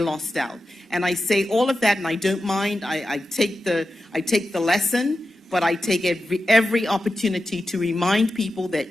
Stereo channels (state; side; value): normal; both; correlation 0.91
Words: out. And I say all of that, and I don't mind. I take the lesson, but I take every opportunity to remind people